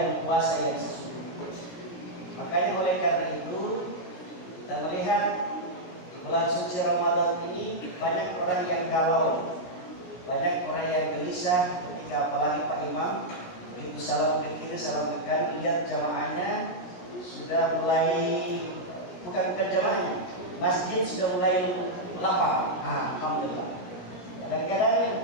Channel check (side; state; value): right; late; 17 ms